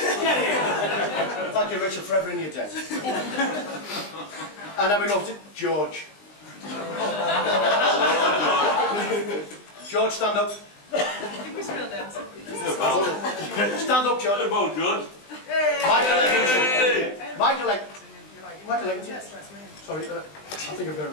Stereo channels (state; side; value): late; right; 20 ms